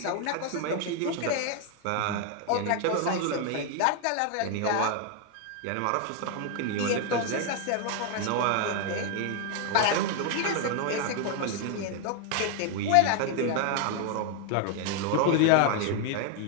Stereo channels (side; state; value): both; different; correlation 0.00